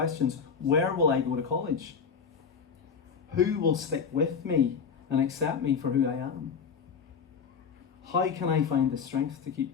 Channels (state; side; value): quieter; right; 6.3 dB